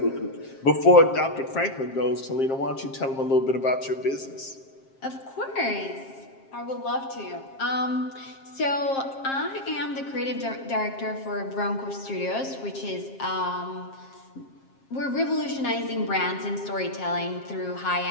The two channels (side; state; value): right; late; 7.5 ms